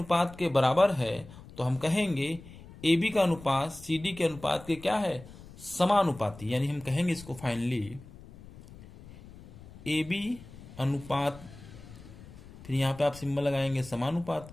के बराबर है, तो हम कहेंगे ए बी का अनुपात सी डी के अनुपात के क्या है, समानुपाती। यानी हम कहेंगे इसको फाइनली ए बी अनुपात, फिर यहां पे आप सिंबल लगाएंगे समानुपात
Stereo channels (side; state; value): left; noise; rumble, 18 dB below the sound